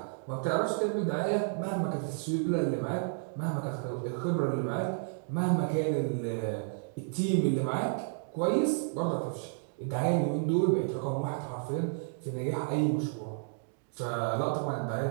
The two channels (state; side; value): silent; left; digital silence